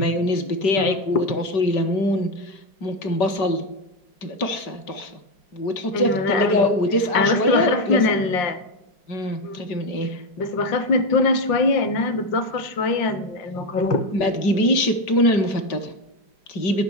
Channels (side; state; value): right; late; 5.2 ms